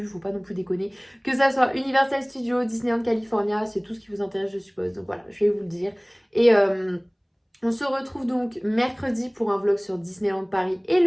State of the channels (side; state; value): both; identical; correlation 1.00